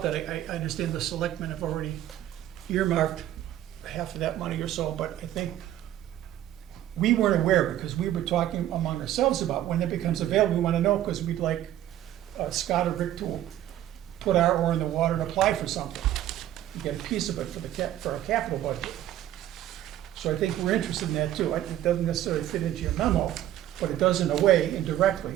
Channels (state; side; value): quieter; left; 12.6 dB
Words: that. I understand the selectmen have already earmarked half of that money or so, but I think we weren't aware, because we were talking among ourselves about when it becomes available. We want to know, because we'd like Scott or Rick to put our oar in the water and apply for something, and get a piece of it for our capital budget. So I think we're interested in that too. It doesn't necessarily fit into your memo, but it does in a way,